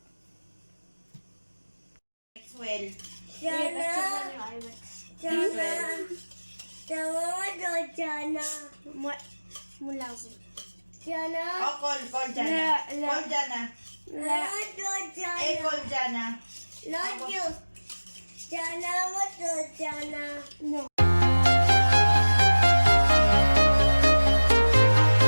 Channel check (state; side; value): inverted; both; correlation -1.00